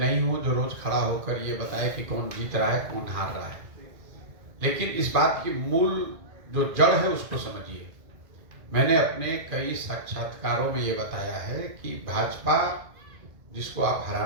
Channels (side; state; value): left; late; 2.1 ms